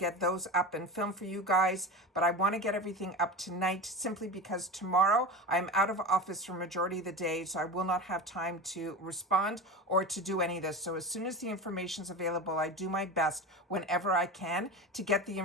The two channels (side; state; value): both; normal; correlation 0.27